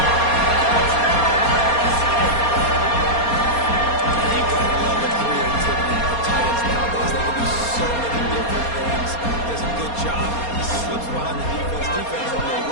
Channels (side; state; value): right; late; 4.2 ms